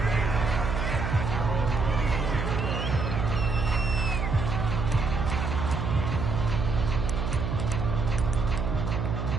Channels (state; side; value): noise; right; hum, 2 dB below the sound